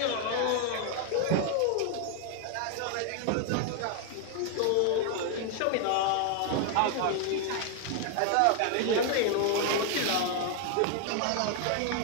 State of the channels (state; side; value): different; both; correlation 0.00